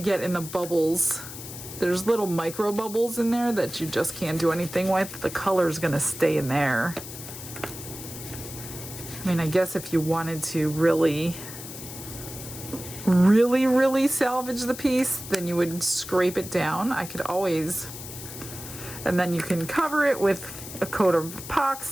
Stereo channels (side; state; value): left; noise; hiss, 11 dB below the sound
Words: in the bubbles. There's little micro bubbles in there that you just can't do anything with. The color's gonna stay in there. I mean, I guess if you wanted to really salvage the piece, then you would scrape it down. I could always, and then you can cover it with a coat of